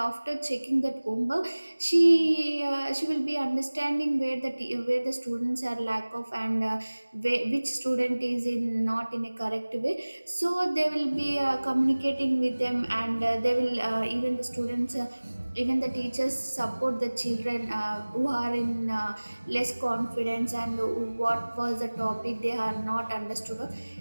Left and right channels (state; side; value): inverted; both; correlation -1.00